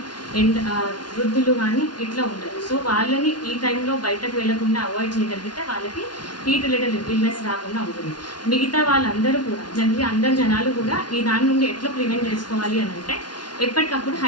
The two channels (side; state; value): right; late; 0.70 ms